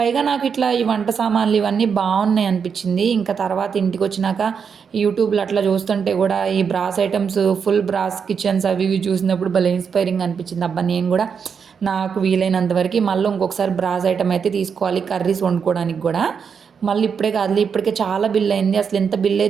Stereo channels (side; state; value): left; quieter; 6.5 dB